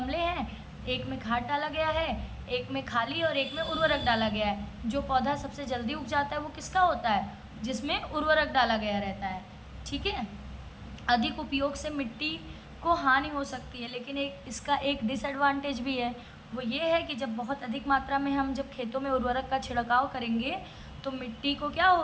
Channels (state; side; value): identical; both; correlation 1.00